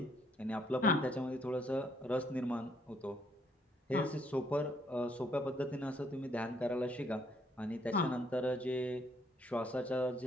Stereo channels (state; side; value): normal; both; correlation 0.69